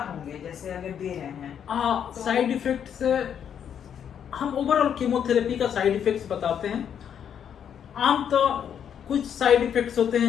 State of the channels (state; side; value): quieter; right; 8.6 dB